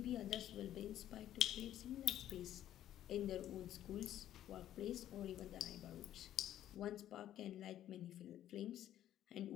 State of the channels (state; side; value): quieter; right; 12.1 dB